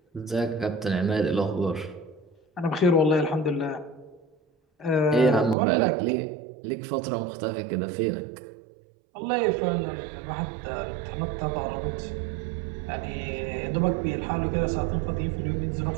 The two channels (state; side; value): drops out; left; at 5.6 s